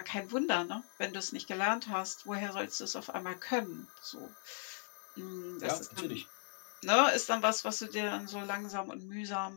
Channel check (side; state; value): right; silent; 53 dB below the other